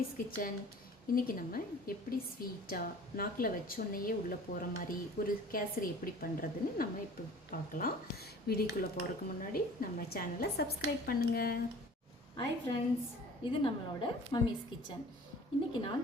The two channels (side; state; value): both; normal; correlation 0.46